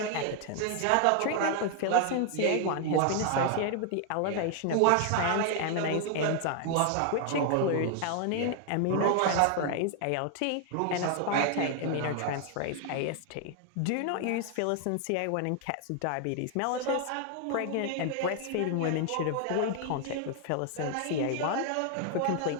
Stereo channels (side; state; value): both; different; correlation 0.00